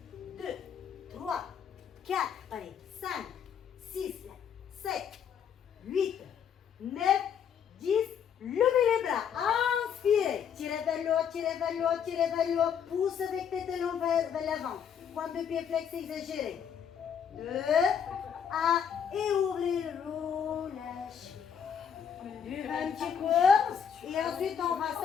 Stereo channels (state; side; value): quieter; right; 7.8 dB